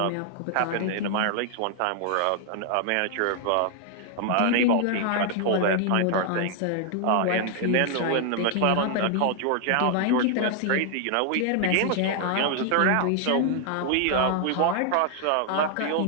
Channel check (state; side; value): different; both; correlation 0.00